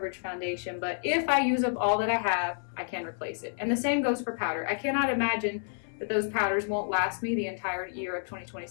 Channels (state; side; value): silent; right; 56 dB below the other